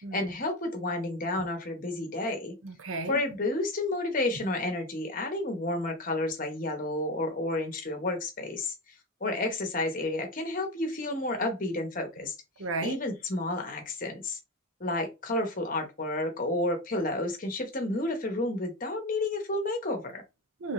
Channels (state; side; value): normal; both; correlation 0.20